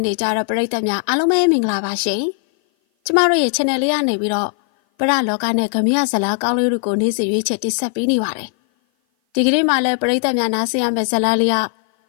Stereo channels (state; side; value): silent; right; 56 dB below the other